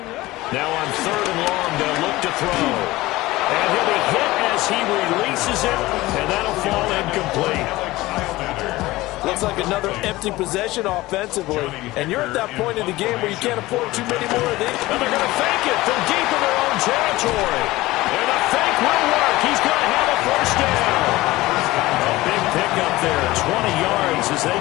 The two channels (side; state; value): right; quieter; 18.7 dB